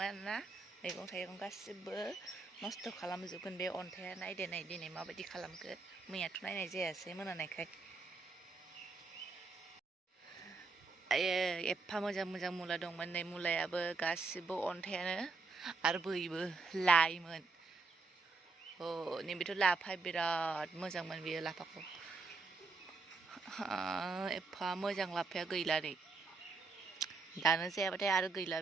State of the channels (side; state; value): left; quieter; 3.9 dB